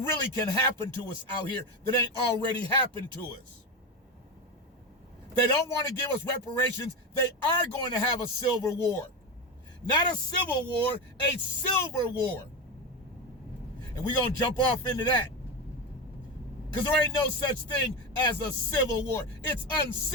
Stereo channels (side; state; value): both; normal; correlation 0.17